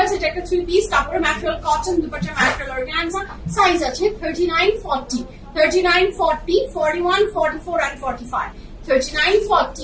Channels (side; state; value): both; identical; correlation 1.00